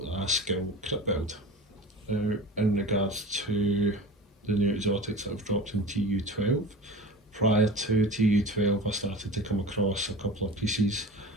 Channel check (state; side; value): normal; both; correlation 0.34